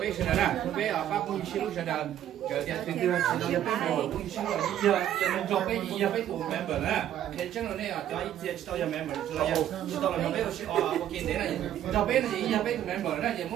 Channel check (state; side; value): quieter; left; 11.3 dB